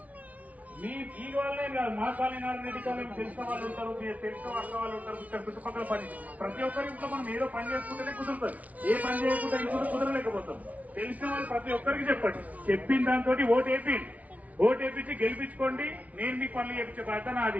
ఈ వాళ్ళే కాదు, మా కాలనీ రెడ్డి కాలనీ తెలిసిన వాళ్ళు ఉంటారు, తెలిసిన అక్క వాళ్ళు ఉంటారు, ఇక్కడ చుట్టుపక్కల పని. ప్రతి ఒక్కరి ఇంట్లో మనం ఏదో పని చేసుకుంటేనే కుదురుతుంది. ఏ పని చేయకుండా ఇంట్లో కుదరలేకపోతాం. తెలిసిన వాళ్ళు ప్రతి ఒక్కరికి చెప్పండి. చెప్పిన దాంతో ఓటేపించి గెలిపించుకోండి. నేను మీకు పనులు చేపించే బాధ్యత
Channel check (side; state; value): left; late; 0.070 ms